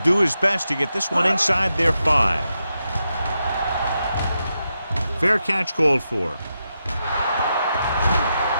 his best to get this one inside their 5. Fair catch called for.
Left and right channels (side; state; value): both; inverted; correlation -0.86